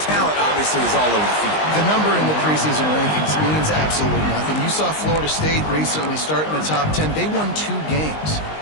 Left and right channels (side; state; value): right; late; 19 ms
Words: talent obviously is all over the field. The number in the preseason rankings means absolutely nothing. You saw Florida State recently start in the top 10. They won 2 games